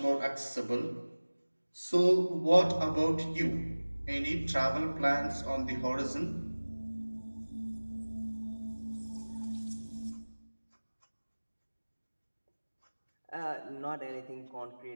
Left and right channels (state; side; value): inverted; both; correlation -1.00